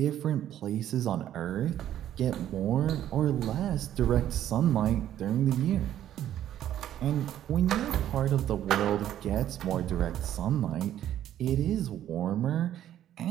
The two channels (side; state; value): left; quieter; 11.6 dB